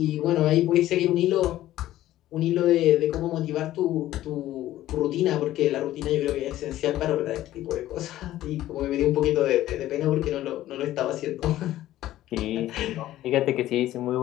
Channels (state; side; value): quieter; right; 14.2 dB